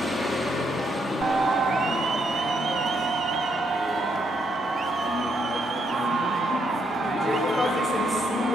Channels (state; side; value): normal; both; correlation 0.75